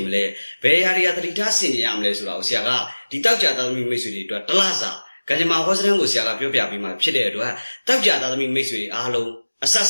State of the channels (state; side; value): inverted; both; correlation -1.00